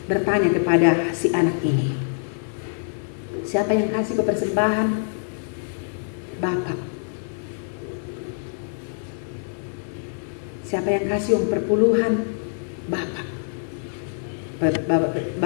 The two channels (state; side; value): silent; right; digital silence